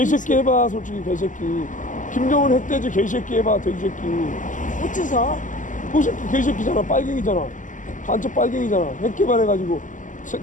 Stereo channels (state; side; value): late; right; 0.37 ms